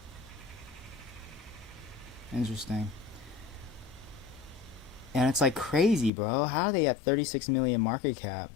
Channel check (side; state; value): right; drops out; at 6.1 s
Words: Interesting. And it's like crazy, bro. How are they at 36 million market cap?